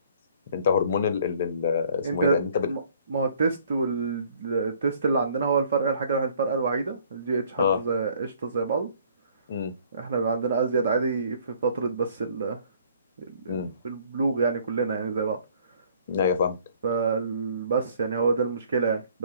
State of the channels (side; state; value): both; inverted; correlation -0.58